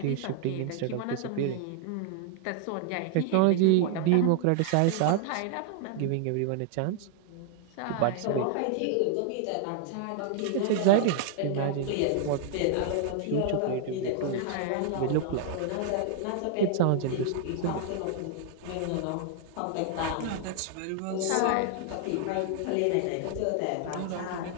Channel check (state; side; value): different; both; correlation 0.00